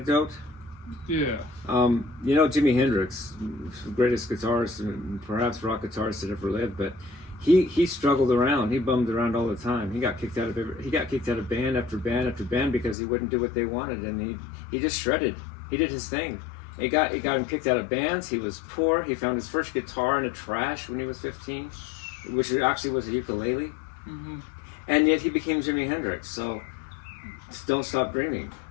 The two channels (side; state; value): right; drops out; at 13.0 s